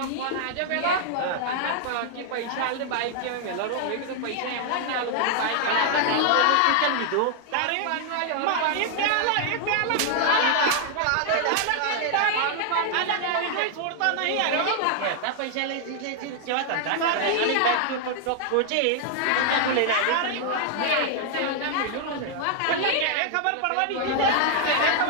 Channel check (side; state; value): both; different; correlation 0.00